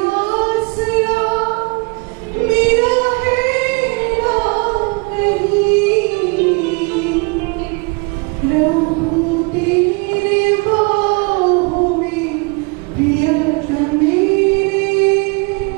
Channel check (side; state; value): left; quieter; 31.1 dB